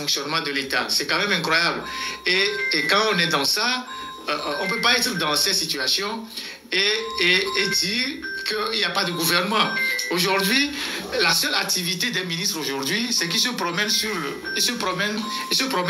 de l'État. C'est quand même incroyable. Et quand on est dans ça, on ne peut pas être dans cette situation et dire qu'il n'y a pas de gouvernement. Aujourd'hui, la seule activité des ministres aujourd'hui, c'est qu'ils se promènent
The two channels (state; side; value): identical; both; correlation 1.00